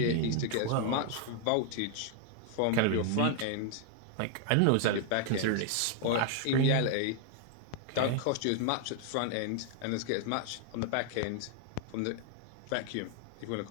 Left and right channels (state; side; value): different; both; correlation 0.00